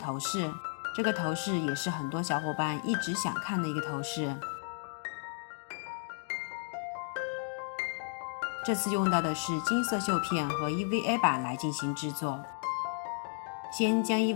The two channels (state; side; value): silent; right; 56 dB below the other